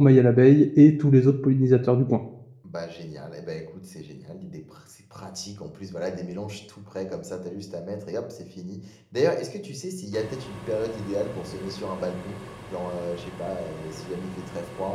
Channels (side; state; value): both; identical; correlation 1.00